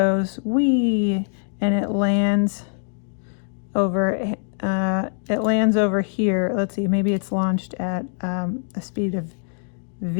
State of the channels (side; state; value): right; silent; digital silence